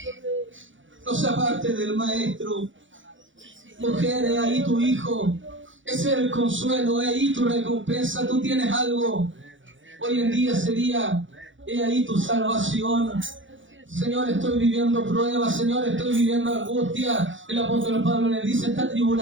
no se aparte del Maestro. Mujer, he ahí tu hijo, ese es el consuelo, he ahí tu recompensa. Tú tienes algo. Hoy en día sería: he ahí tu salvación. Señor, estoy viviendo pruebas, Señor, estoy viviendo angustia. El apóstol Pablo le dice: esta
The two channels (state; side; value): late; left; 0.56 ms